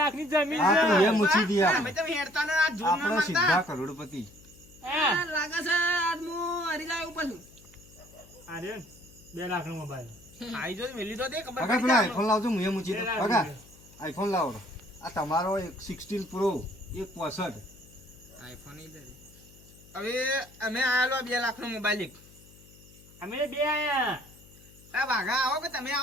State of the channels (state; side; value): noise; left; hum, 24 dB below the sound